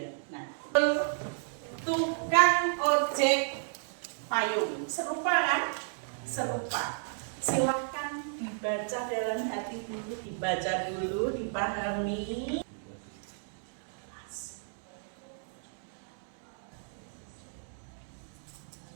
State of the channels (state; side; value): silent; left; digital silence